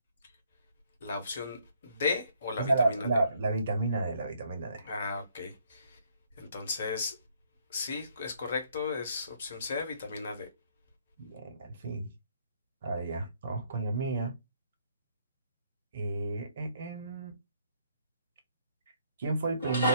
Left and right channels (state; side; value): inverted; both; correlation -0.67